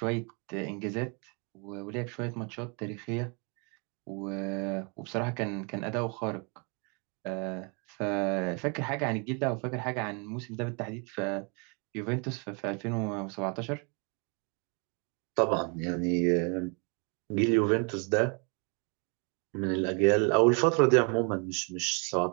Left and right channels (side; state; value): left; quieter; 35.0 dB